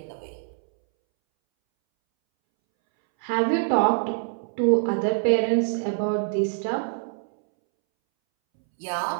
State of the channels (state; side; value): silent; left; 62 dB below the other